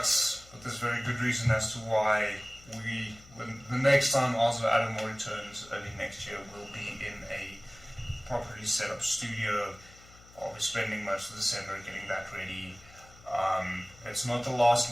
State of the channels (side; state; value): left; noise; hum, 23 dB below the sound